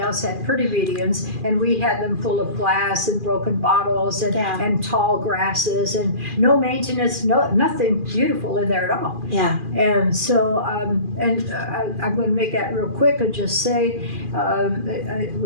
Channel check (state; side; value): late; left; 2.4 ms